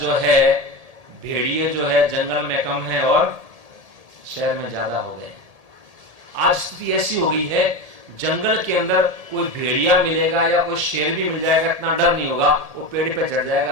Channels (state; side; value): late; left; 1.7 ms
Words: जो है भेड़िए जो है जंगल में कम है और शहर में ज्यादा हो गए। आज स्थिति ऐसी हो गई है, जंगल के अंदर कोई भेड़िया मिलेगा या कोई शेर भी मिल जाएगा, इतना डर नहीं होगा, वो पेड़ पे चढ़